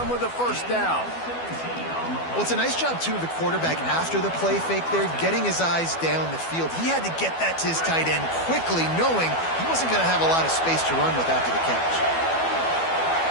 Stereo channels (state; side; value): late; right; 12 ms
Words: with a first down. Well, it's a nice job, too, of the quarterback after the play fake there, getting his eyes down the field. He had to get that to his tight end quickly, knowing he wasn't going to have a lot of space to run with after the catch.